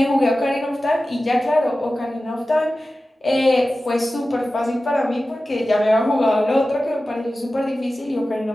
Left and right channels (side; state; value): both; normal; correlation 0.95